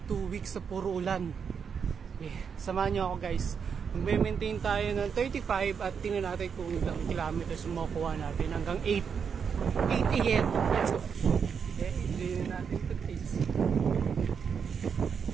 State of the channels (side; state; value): left; quieter; 6.6 dB